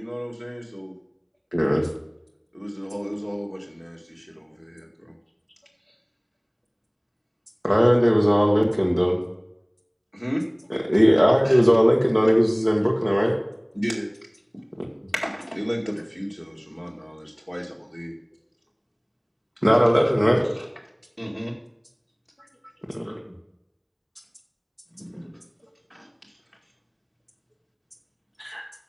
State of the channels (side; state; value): both; identical; correlation 1.00